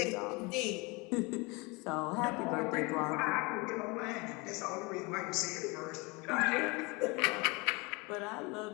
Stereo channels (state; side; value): quieter; right; 26.9 dB